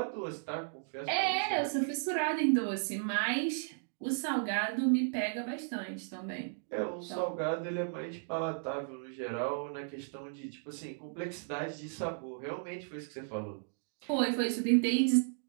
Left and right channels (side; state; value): left; silent; digital silence